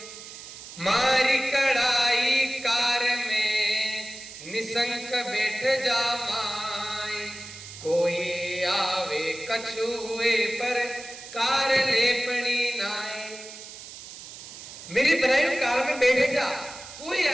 मारी कड़ाई कार में निसंक बैठ जा माए, कोई आवे कछुए पर कार लेपनी नाए। मेरी बनाई कार में बैठे जा, कोई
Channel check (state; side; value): noise; right; hiss, 14 dB below the sound